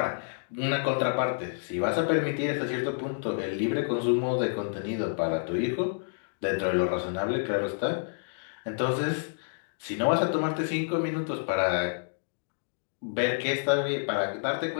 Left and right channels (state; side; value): silent; right; digital silence